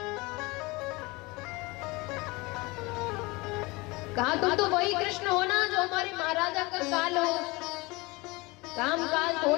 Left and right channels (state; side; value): quieter; right; 24.1 dB